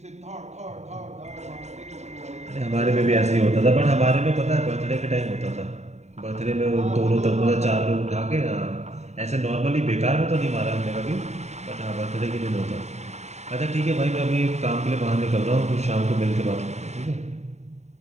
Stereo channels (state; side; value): late; left; 0.32 ms